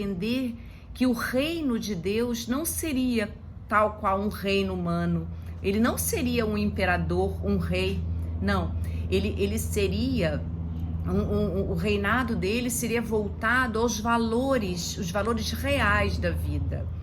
que o reino de Deus não seria tal qual um reino humano. Ele não seria um imperador, um rei. Não, ele seria... O reinado dele seria voltado aos valores, os valores reais da vida.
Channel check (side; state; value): both; identical; correlation 1.00